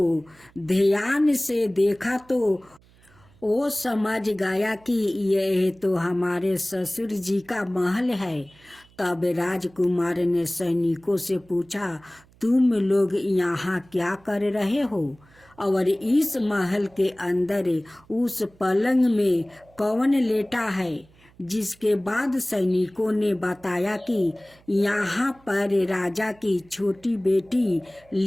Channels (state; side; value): noise; right; hum, 29 dB below the sound